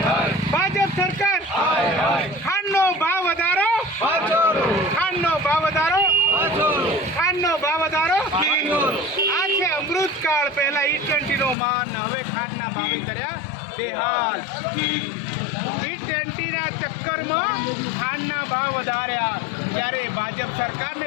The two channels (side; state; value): right; drops out; at 11.6 s